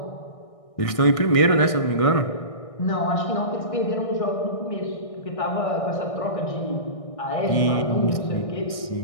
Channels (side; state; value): right; late; 1.6 ms